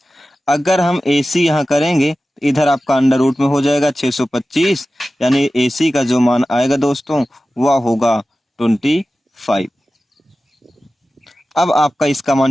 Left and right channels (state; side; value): normal; both; correlation 0.95